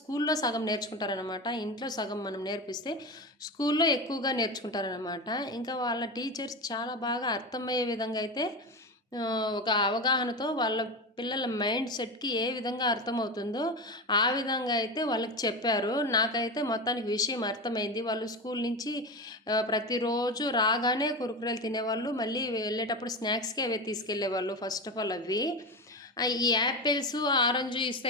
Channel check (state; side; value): normal; both; correlation 0.21